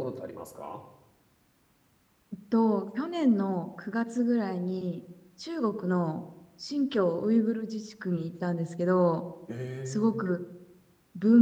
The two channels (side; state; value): both; identical; correlation 1.00